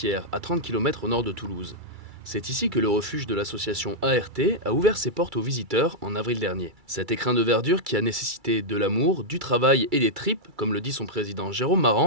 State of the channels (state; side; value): late; left; 2.3 ms